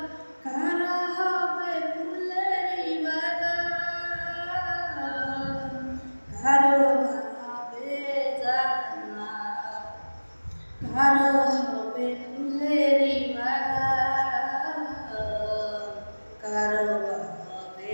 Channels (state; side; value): inverted; both; correlation -1.00